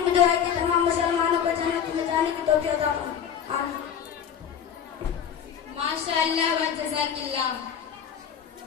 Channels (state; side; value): quieter; right; 8.4 dB